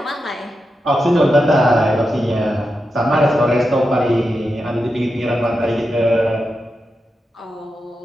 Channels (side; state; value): both; normal; correlation 0.88